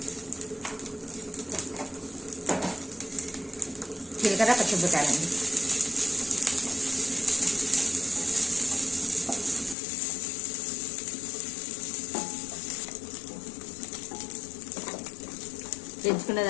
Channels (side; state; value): right; drops out; at 9.8 s